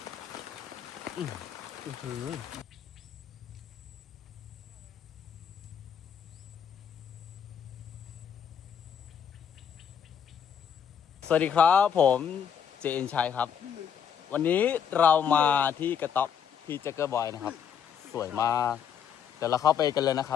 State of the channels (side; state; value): right; quieter; 8.1 dB